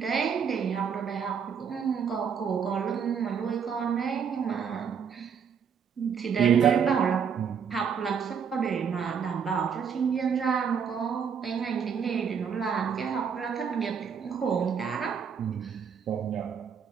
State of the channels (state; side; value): quieter; left; 7.0 dB